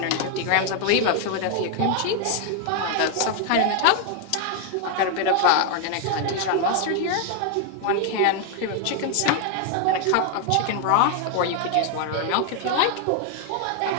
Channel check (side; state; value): both; different; correlation 0.00